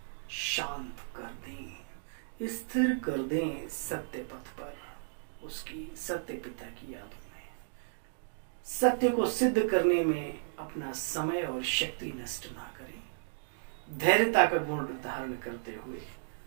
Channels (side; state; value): left; silent; digital silence